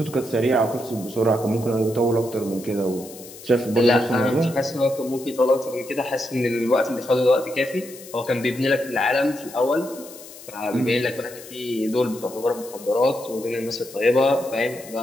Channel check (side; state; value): left; noise; hiss, 17 dB below the sound